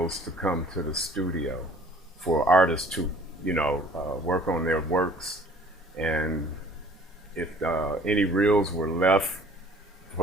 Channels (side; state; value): both; normal; correlation 0.53